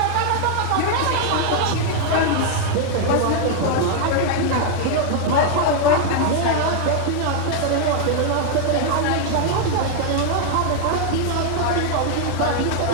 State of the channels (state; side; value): different; both; correlation 0.00